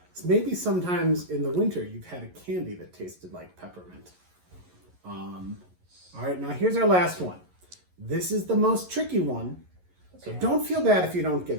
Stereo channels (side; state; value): left; late; 11 ms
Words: So maybe sometimes in the winter you've had a candy that tasted like peppermint. All right, now here's our last one. This is the most tricky one. So don't feel bad if you don't get